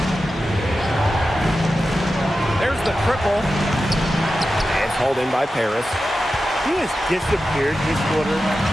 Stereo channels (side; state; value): both; normal; correlation 0.92